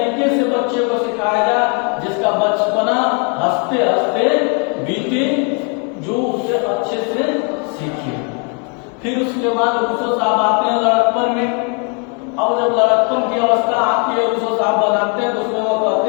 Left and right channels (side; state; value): right; quieter; 37.3 dB